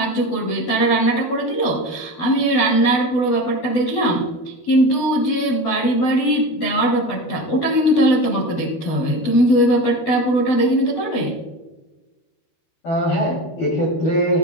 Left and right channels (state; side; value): late; right; 12 ms